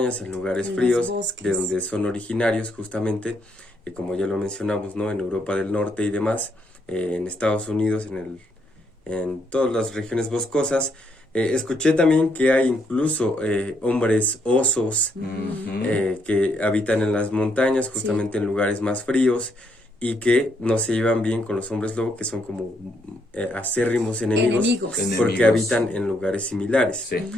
en lugares fríos, de donde son originarios justamente, como ya lo mencionamos, ¿no? En Europa del Norte y demás, en Estados Unidos, en todas las regiones boscosas. Escuché también que hay incluso hombres osos que habitan en las montañas, justamente en lugares más fríos, y que no se llevan bien con los hombres lobo, que son como acérrimos enemigos, porque habitan en lugares similares.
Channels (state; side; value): normal; both; correlation 0.74